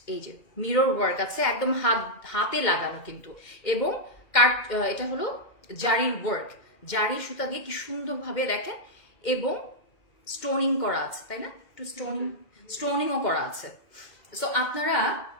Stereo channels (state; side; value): late; right; 2.1 ms